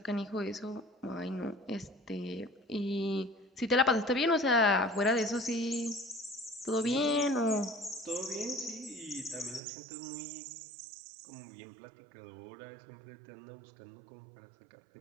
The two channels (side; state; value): left; drops out; at 9.6 s